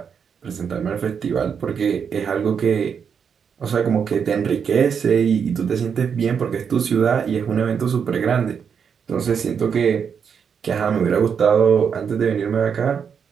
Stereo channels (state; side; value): quieter; left; 6.9 dB